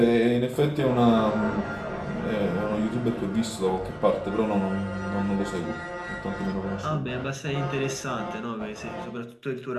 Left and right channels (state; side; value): identical; both; correlation 1.00